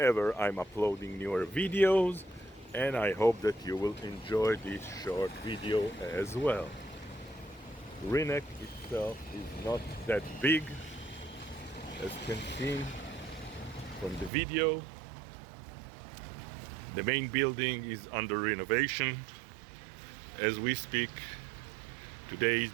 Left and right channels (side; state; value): left; drops out; at 14.3 s